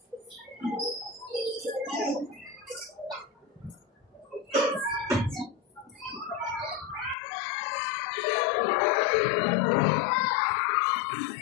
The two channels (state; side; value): drops out; right; at 7.2 s